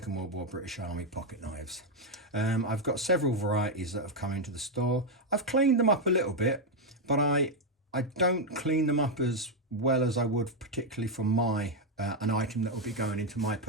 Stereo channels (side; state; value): both; normal; correlation 0.02